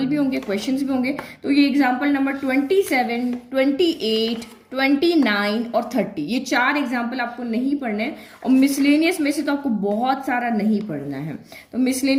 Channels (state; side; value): identical; both; correlation 1.00